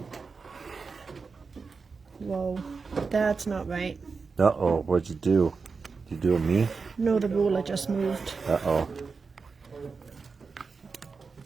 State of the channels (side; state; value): left; quieter; 4.8 dB